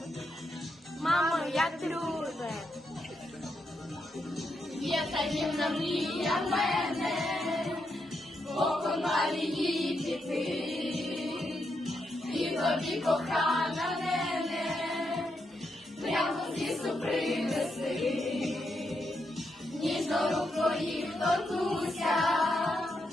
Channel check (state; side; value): normal; both; correlation 0.82